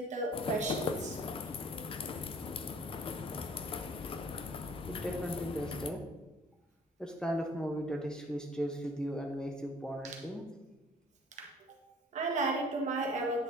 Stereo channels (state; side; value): normal; both; correlation 0.53